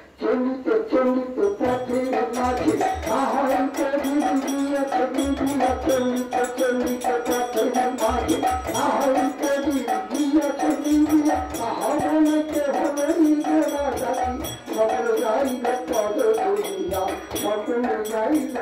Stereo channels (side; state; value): both; identical; correlation 1.00